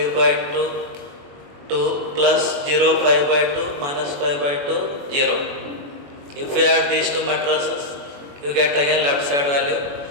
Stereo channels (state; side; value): late; left; 21 ms